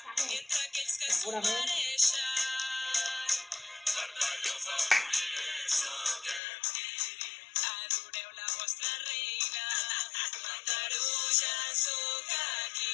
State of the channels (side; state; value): right; drops out; at 6.4 s